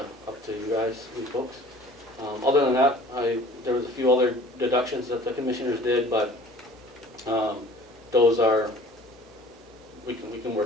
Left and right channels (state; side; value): normal; both; correlation 0.49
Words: you guys, you folks. Other than that, there was a few other deductions that the commissioners did, but those are, we can